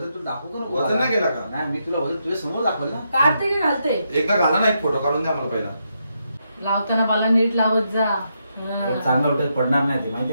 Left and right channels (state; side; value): inverted; both; correlation -0.81